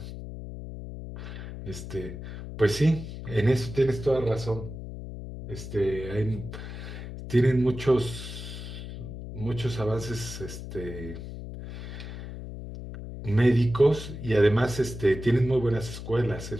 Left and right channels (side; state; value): left; noise; hum, 9 dB below the sound